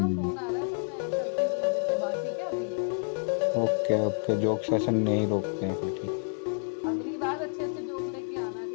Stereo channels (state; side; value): silent; right; 58 dB below the other